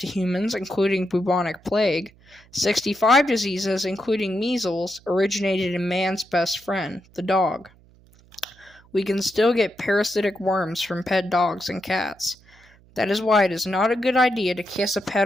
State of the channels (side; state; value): right; noise; hum, 28 dB below the sound